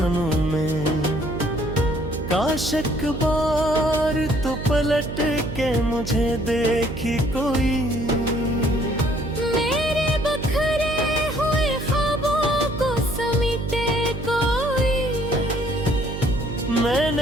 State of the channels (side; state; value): right; noise; hum, 7 dB below the sound